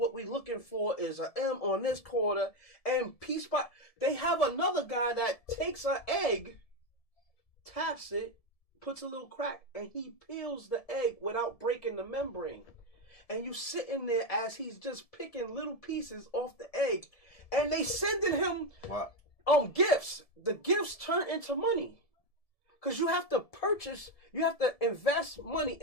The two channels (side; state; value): right; late; 1.7 ms